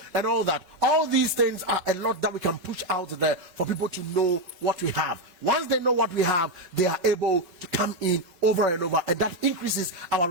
and all that. All these things are a lot that we can push out there for people to know what we have. Once they know what we have, they are able to come in over and over, and that increases our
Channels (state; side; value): late; left; 5.5 ms